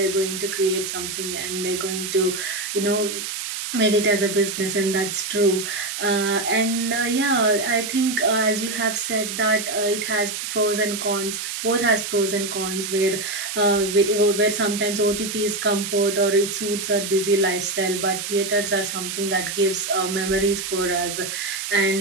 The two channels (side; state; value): right; noise; hiss, 5 dB below the sound